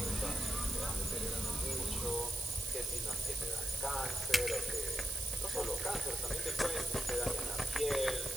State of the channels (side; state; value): right; noise; hiss, 3 dB below the sound